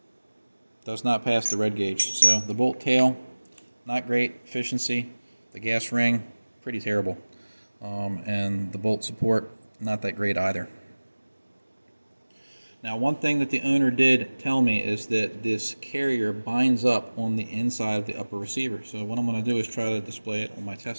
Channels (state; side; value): inverted; both; correlation -1.00